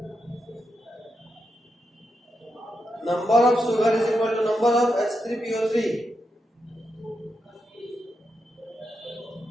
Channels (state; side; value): normal; both; correlation 0.85